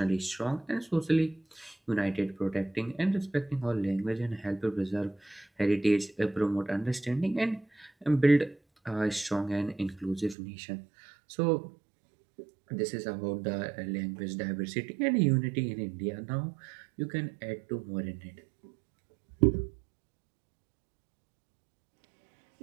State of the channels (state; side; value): drops out; left; at 10.4 s